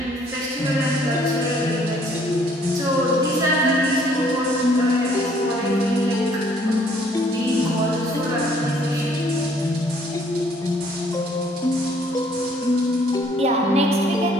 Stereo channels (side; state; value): both; normal; correlation 0.62